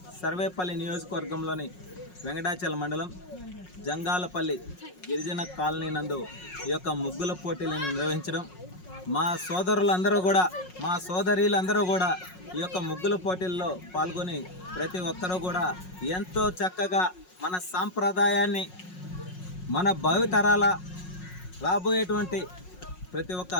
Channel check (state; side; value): late; right; 5.5 ms